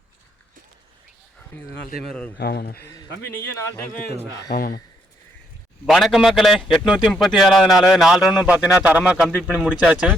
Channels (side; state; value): both; normal; correlation 0.74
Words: வணக்கம் மக்களே. 837வது நாள் 4 ரவுண்டும் பார்த்தீங்கன்னா தரமாக கம்ப்ளீட் பண்ணி முடிச்சாச்சு.